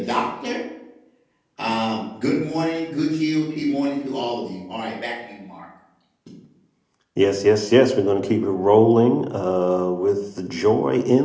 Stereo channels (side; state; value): both; identical; correlation 1.00